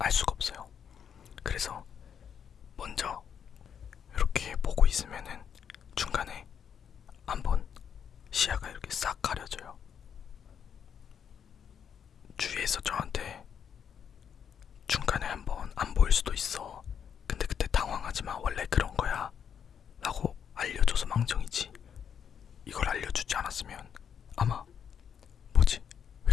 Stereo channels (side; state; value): right; quieter; 7.9 dB